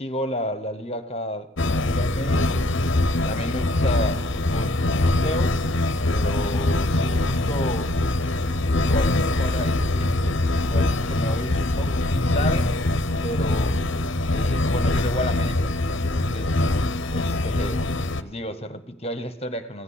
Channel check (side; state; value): both; normal; correlation 0.65